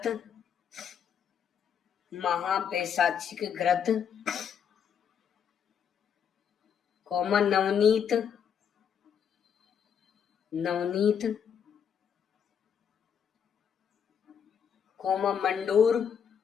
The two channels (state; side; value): quieter; right; 7.8 dB